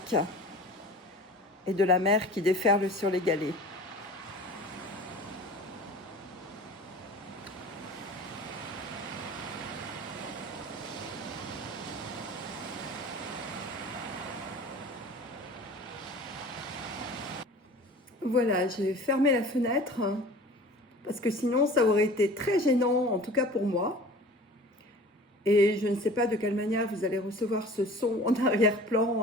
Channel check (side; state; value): both; normal; correlation 0.42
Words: et de la mer qui déferle sur les galets. Voilà, j'ai fermé la fenêtre parce que sinon ça aurait été très gênant, en tout cas pour moi. Et je ne sais pas de quelle manière vous allez recevoir ce son en arrière-plan,